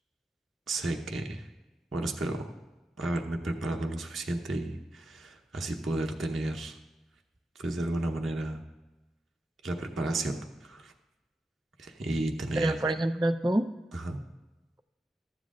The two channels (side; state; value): both; normal; correlation 0.88